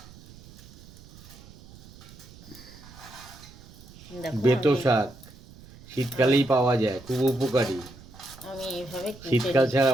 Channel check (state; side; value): noise; right; rumble, 20 dB below the sound